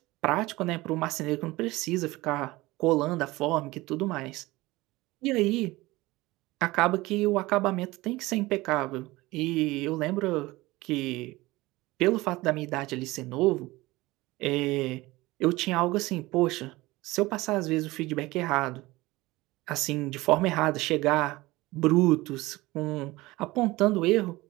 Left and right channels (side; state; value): left; quieter; 20.1 dB